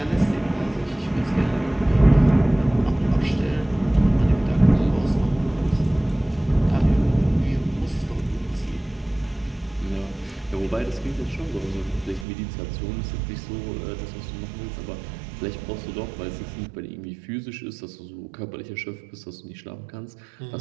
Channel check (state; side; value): drops out; left; at 12.2 s